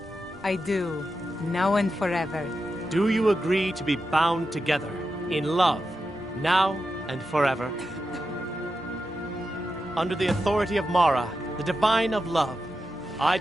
I do, now and forever. Do you agree to be bound together in love, now and forever? Under the authority of Mara, the divine of love, I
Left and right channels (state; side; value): normal; both; correlation 0.89